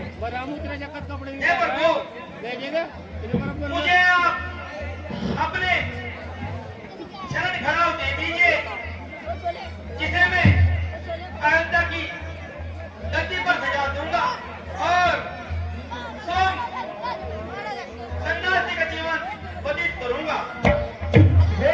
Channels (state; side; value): identical; both; correlation 1.00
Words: हे प्रभु, मुझे आप अपने शरण खड़ाव दे दीजिए, जिसे मैं अयोध्या की धरती पर सजा दूंगा और सन्यासी का जीवन व्यतीत करूंगा। हे